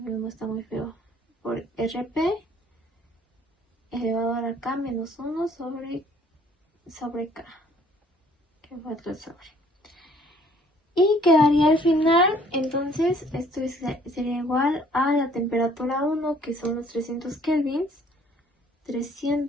no está muy feo, por RP elevado a la K menos 1 sobre K, que fue otro sobre. Y quedaría al final, entonces esto sería igual a la temperatura 1, que son los 300 kelvins,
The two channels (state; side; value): normal; both; correlation 0.59